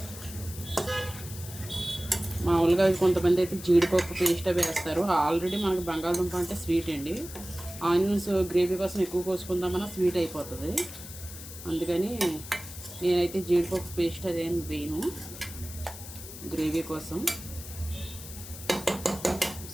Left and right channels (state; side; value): noise; left; hiss, 13 dB below the sound